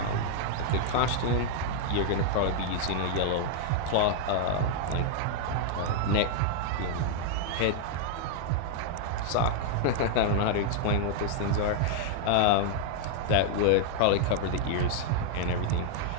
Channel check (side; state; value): both; different; correlation 0.00